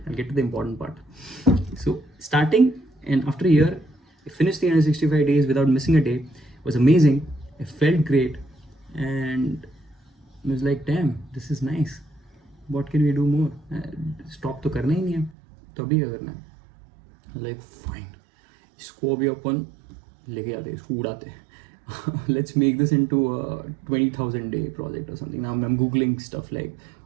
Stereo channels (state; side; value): drops out; left; at 15.4 s